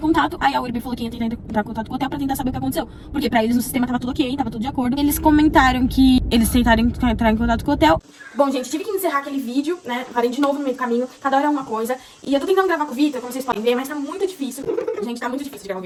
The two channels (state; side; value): identical; both; correlation 1.00